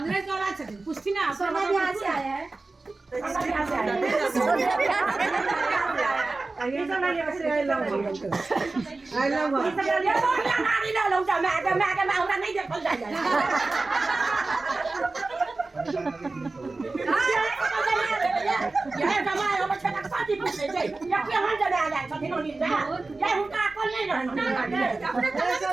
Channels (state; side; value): quieter; left; 3.5 dB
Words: कौन आ सकते पूछती ना सोना भी यहाँ से आया है ये सब ना यहाँ से आई लव ये सब ये तो नानी ना लौटा मैं हमरा नहीं देखल जाए ये जमाए हम छटा साथी पूछे छै या के हम जने आ जाए छथिन ओनी जा ये हुनका अकल नहीं रहन